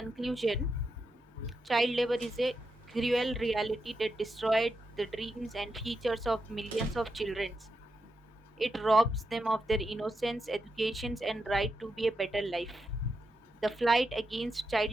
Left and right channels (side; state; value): both; normal; correlation 0.86